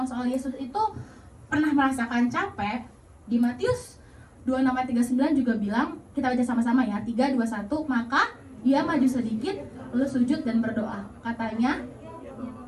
soal Yesus itu pernah merasakan capek, di Matius 26:39 juga bilang, kita baca sama-sama ya, 3, 2, 1, maka ia maju sedikit, lalu sujud dan berdoa. Katanya,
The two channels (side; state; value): both; identical; correlation 1.00